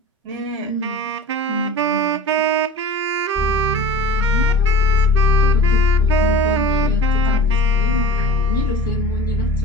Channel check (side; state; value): both; normal; correlation 0.36